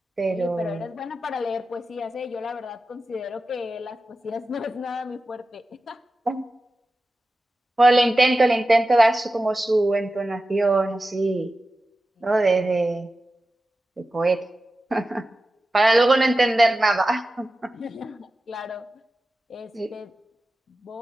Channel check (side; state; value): both; normal; correlation 0.94